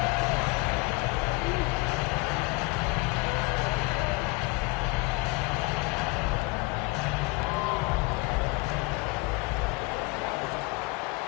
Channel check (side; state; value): right; quieter; 24.9 dB